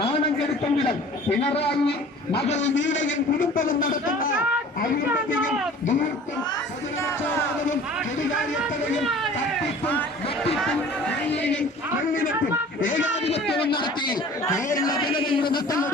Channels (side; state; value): both; normal; correlation 0.46